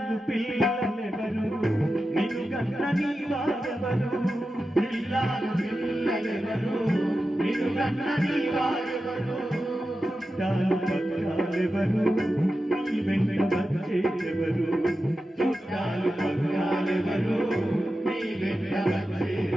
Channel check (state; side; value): normal; both; correlation 0.92